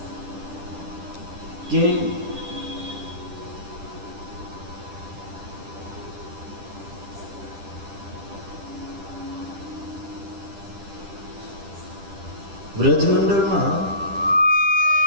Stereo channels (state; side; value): late; left; 10 ms